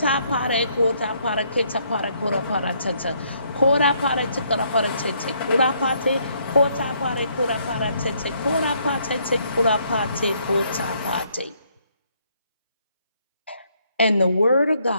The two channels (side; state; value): both; inverted; correlation -0.70